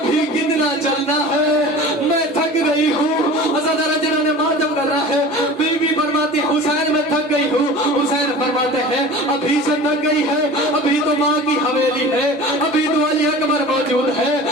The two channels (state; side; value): normal; both; correlation 0.38